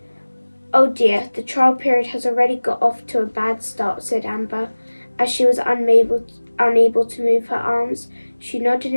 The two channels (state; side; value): inverted; both; correlation -1.00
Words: Oh dear, the trial period has already got off to a bad start, said Amber. As she was unable to move her arms, she nodded